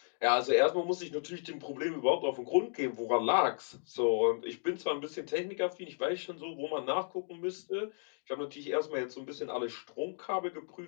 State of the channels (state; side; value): silent; right; digital silence